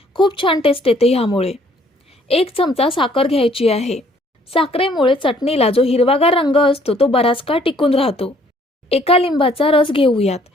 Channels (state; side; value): normal; both; correlation 0.62